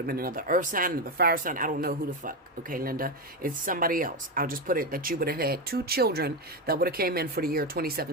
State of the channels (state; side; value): normal; both; correlation 0.12